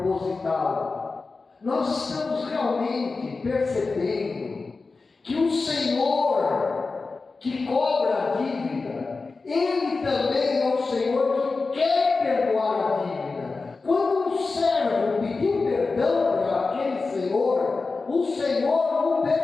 Nós estamos realmente percebendo que o Senhor que cobra a dívida, Ele também é o Senhor que quer perdoar a dívida. Quando um servo pediu perdão para aquele Senhor, o Senhor o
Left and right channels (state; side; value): quieter; right; 4.0 dB